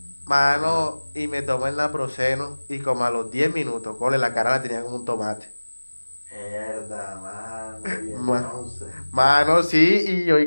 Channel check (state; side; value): inverted; both; correlation -1.00